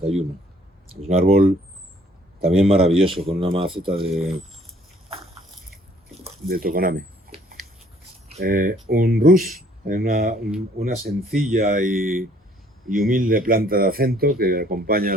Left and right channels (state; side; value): normal; both; correlation 0.60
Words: Es un árbol también maravilloso, con una maceta de tokoname. Un rus, una sencilla y humilde planta de acento que acompaña a